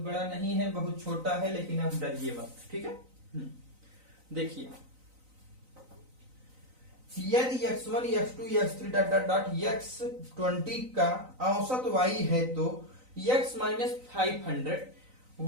नहीं है, बहुत छोटा है, लेकिन अब डरिए मत। ठीक है, देखिए यदि x1 x2 x3 dot dot dot x20 का औसत y है तो x minus 500,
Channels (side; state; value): left; late; 3.9 ms